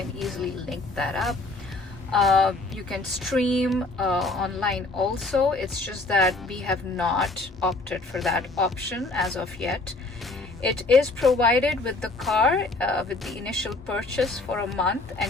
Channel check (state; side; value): quieter; right; 3.2 dB